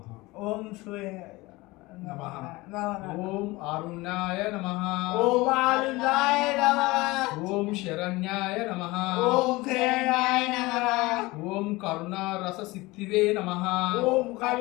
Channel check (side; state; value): right; quieter; 21.4 dB